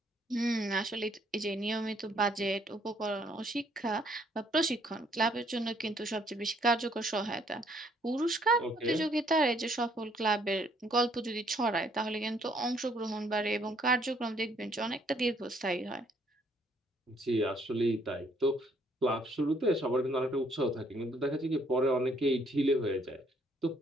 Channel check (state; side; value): normal; both; correlation 0.66